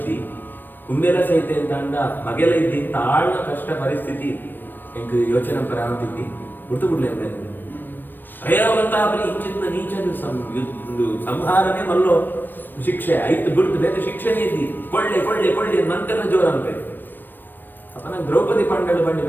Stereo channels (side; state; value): right; late; 0.093 ms